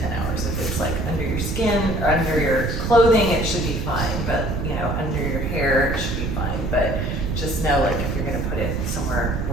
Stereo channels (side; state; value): right; noise; rumble, 2 dB below the sound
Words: 10 hours. If it's like under your skin or under your clothing, it should be fine. But you know, under your hair, it should be fine. But just know, like, if you're gonna put it somewhere